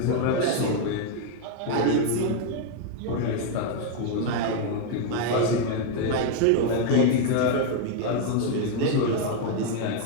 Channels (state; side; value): different; both; correlation 0.01